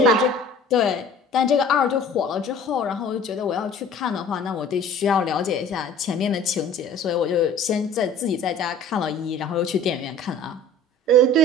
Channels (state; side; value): normal; both; correlation 0.47